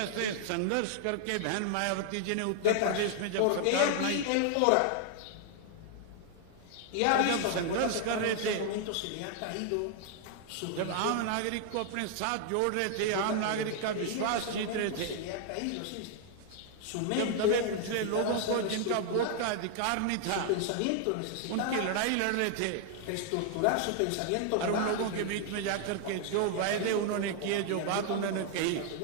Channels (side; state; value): both; different; correlation 0.00